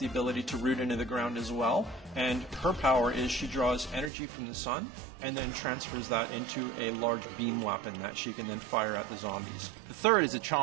ability to root into the ground as well, and her power is she draws energy from the sun and then transfers that into a large beam weapon that she can then fire at the zombies. The third is a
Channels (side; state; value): left; drops out; at 4.1 s